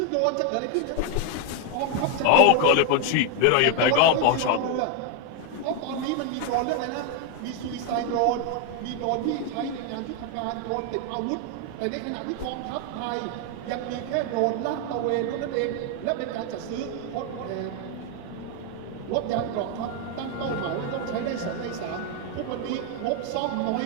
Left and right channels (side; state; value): both; different; correlation 0.01